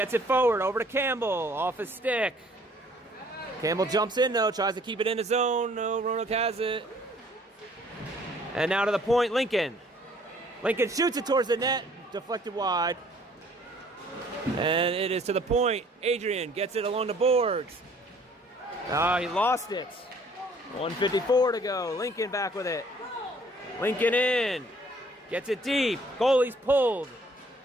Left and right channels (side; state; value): both; normal; correlation 0.58